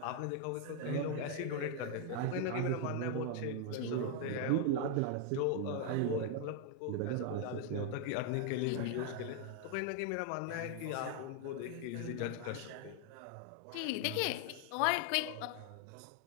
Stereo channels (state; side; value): different; both; correlation 0.00